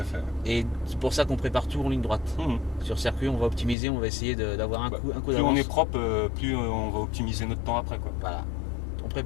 fait. Et c'est pour ça qu'on prépare tout en ligne droite. Sur circuit, on va optimiser, on va essayer d'avoir un coup Plus d'avance. on est propre, plus on va optimiser notre temps après, quoi. Voilà. On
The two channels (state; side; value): drops out; right; at 3.8 s